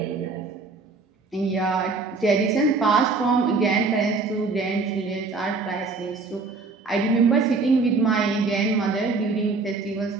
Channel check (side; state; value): left; quieter; 4.1 dB